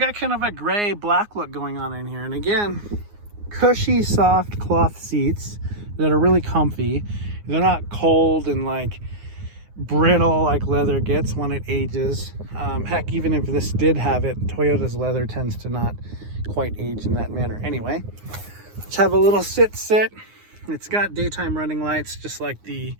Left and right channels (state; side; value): late; left; 9.6 ms